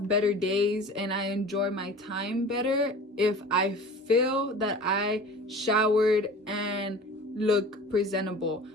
better days and I enjoy my time better if I feel that I showered and look presentable.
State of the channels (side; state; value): both; normal; correlation 0.40